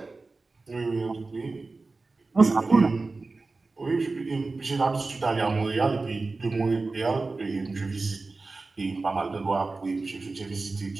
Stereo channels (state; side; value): quieter; left; 3.6 dB